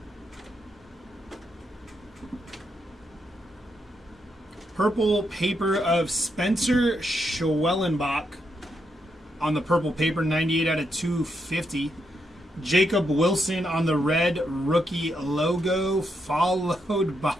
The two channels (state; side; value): normal; both; correlation 0.80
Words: Purple paper of Spencer Schwellenbach on the purple paper, 98 out of 250. Jacob Wilson on the red rookie logo, followed